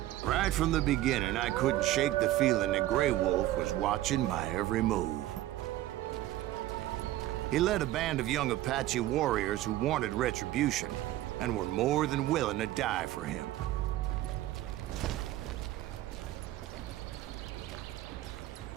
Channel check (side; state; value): left; quieter; 14.9 dB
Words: Right from the beginning, I couldn't shake the feeling that Grey Wolf was watching my every move. He led a band of young Apache warriors who wanted retribution and were more than willing to die for him.